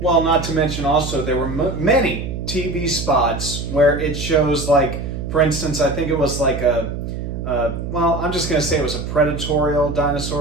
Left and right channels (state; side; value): noise; right; hum, 6 dB below the sound